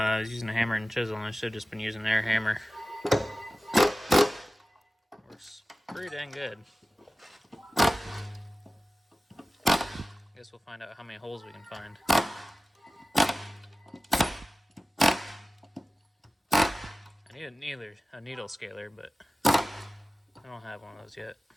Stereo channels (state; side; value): normal; both; correlation 0.96